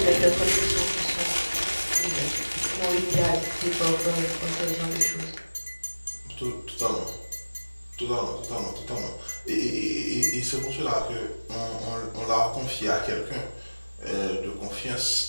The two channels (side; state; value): both; inverted; correlation -1.00